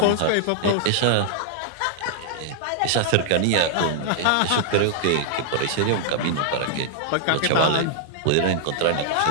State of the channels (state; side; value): different; both; correlation -0.01